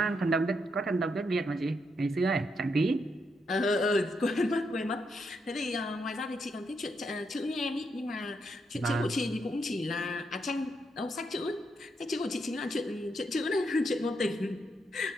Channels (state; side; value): normal; both; correlation 0.80